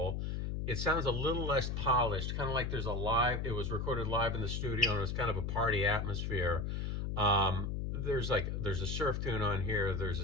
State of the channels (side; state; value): left; noise; hum, 2 dB below the sound